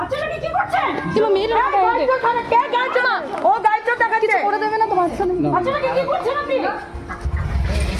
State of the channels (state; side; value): identical; both; correlation 1.00